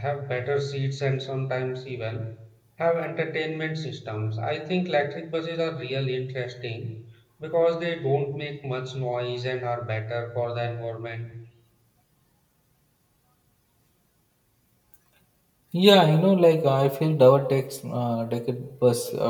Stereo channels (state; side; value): identical; both; correlation 1.00